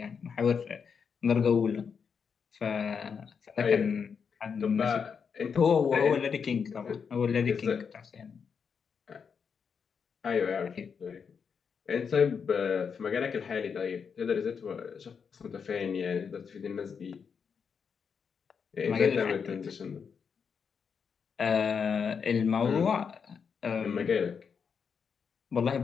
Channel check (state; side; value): quieter; right; 6.3 dB